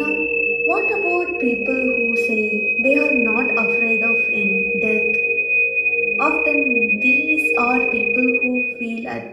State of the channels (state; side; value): identical; both; correlation 1.00